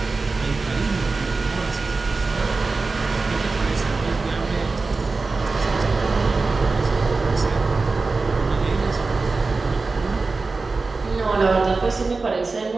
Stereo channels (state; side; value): quieter; left; 3.9 dB